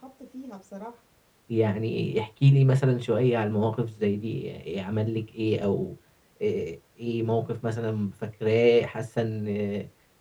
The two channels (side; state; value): both; identical; correlation 1.00